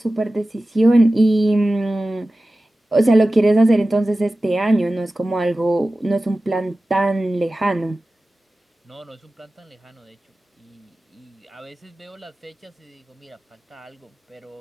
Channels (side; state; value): both; normal; correlation 0.95